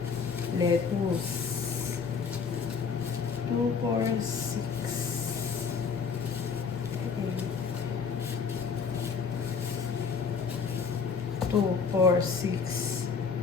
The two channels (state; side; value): quieter; right; 5.7 dB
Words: lettuce. 2, 4, 6. 2, 4, 6,